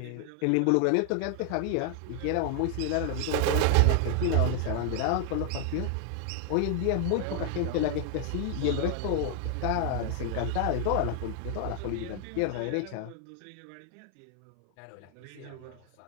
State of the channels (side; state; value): both; different; correlation 0.00